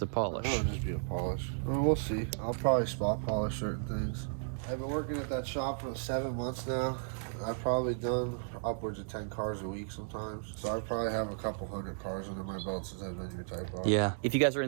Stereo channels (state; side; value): silent; left; digital silence